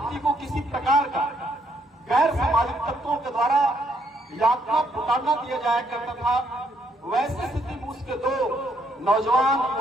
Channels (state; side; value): normal; both; correlation 0.72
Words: को किसी प्रकार का गैर सामाजिक तत्वों के द्वारा यातना पुकारना दिया जाया करता था। वैसी स्थिति में उसके दो नौजवान